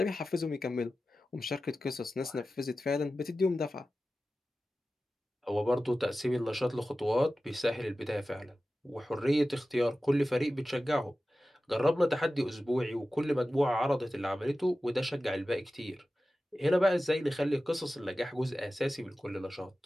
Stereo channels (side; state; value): both; normal; correlation 0.95